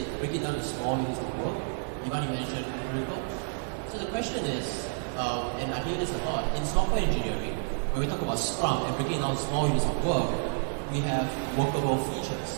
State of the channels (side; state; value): left; silent; digital silence